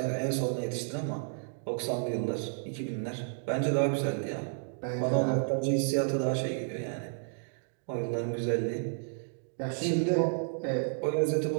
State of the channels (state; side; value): silent; left; digital silence